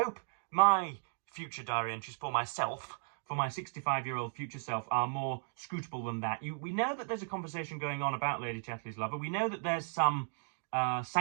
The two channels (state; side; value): silent; left; digital silence